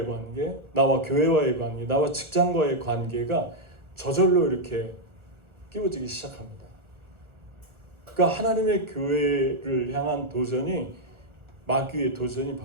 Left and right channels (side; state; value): left; late; 1.3 ms